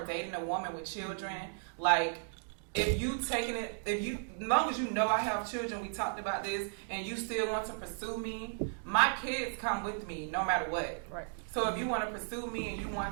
dating a woman with children, like, as long as I have children, we talked about this, and you still want to pursue me, my kids come with me no matter what. Right. So if you want to pursue me and you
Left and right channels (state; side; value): silent; left; digital silence